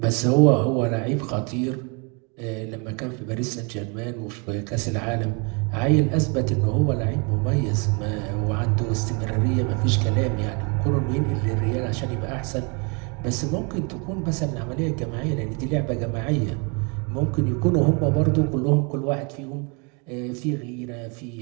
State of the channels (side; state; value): left; quieter; 33.5 dB